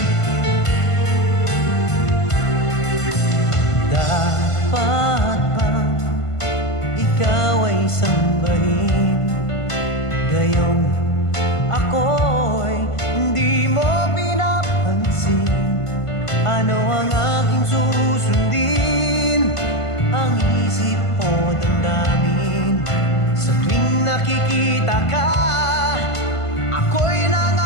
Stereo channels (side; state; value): right; late; 1.5 ms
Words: Dapat bang ikaw ay sambahin? Gayong ako'y hindi mo pinapansin. Ano ang aking susundin? Ang isip o damdamin? Sa tuwing nakikita ka, ako'y